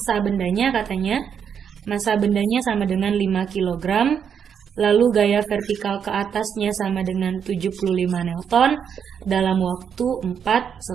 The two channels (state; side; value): quieter; left; 7.6 dB